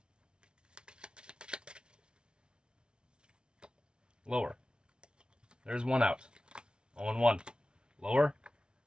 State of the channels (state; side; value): late; left; 0.055 ms